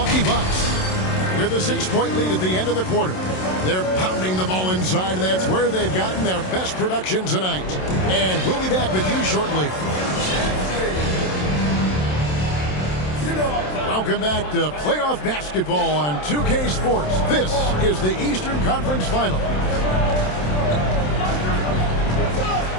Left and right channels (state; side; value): late; right; 27 ms